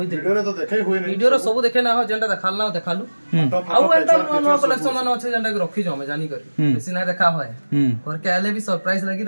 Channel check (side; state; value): both; inverted; correlation -1.00